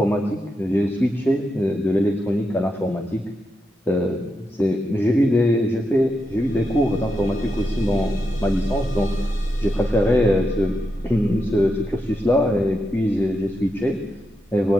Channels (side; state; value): both; normal; correlation 0.85